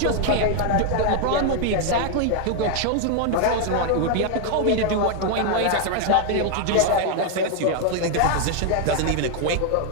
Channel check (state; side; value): different; both; correlation 0.00